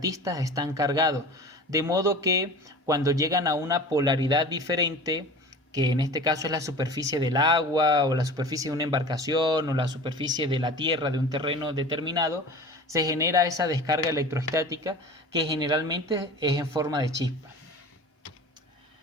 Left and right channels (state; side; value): normal; both; correlation 0.37